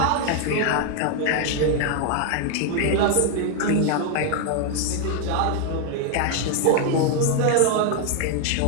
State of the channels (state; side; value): different; both; correlation 0.00